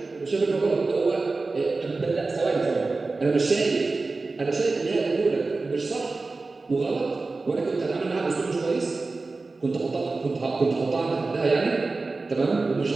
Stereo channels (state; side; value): quieter; left; 3.7 dB